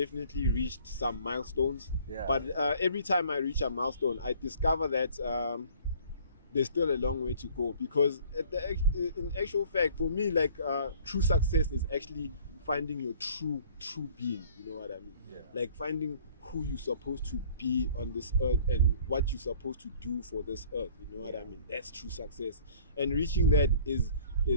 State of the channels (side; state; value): both; inverted; correlation -0.53